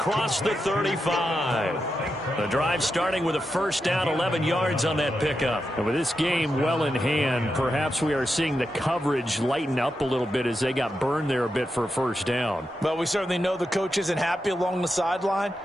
the 35. The drive starting with a 1st down, 11 yards on that pickup. And with this game well in hand, perhaps we are seeing the coverage lighten up a little bit as they got burned there a bit for a 1st down. Well, we certainly know the coach isn't happy along the sideline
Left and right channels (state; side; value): normal; both; correlation 0.87